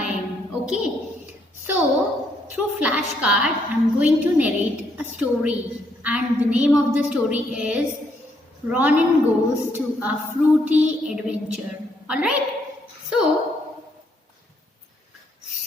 okay? So through flashcard I am going to narrate a story and the name of the story is Ronin Goes to a Fruity Adventure. Alright? So,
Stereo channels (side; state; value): both; normal; correlation 0.73